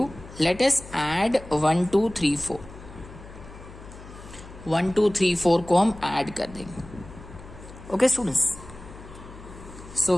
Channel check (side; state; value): left; noise; hum, 16 dB below the sound